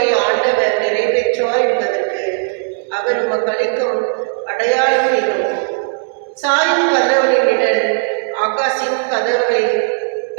ஆண்டவர் நிறைவேற்றுவார் என்பதற்கு அவர் உமக்கு அளிக்கும் அடையாளம் இது: சாயும் கதவனின் நிழல் ஆகாசின் கதவை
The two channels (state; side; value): silent; left; 69 dB below the other